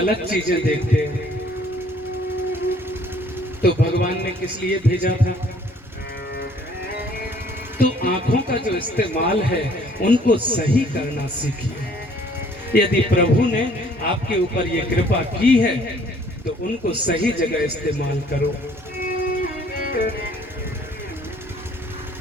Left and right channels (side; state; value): both; normal; correlation 0.59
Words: चीजें देखते हैं। तो भगवान ने किस लिए भेजा था? तो आंखों का जो इस्तेमाल है उनको सही करना सीखिए। यदि प्रभु ने आपके ऊपर ये कृपा की है तो उनको सही जगह इस्तेमाल करो।